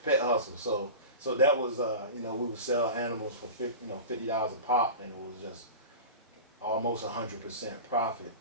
hustle. So that was we would sell animals for $50 a pop, and it was just almost 100% profit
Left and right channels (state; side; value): inverted; both; correlation -0.32